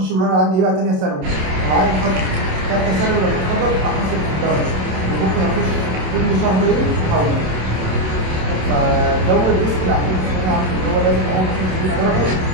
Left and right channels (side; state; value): left; late; 27 ms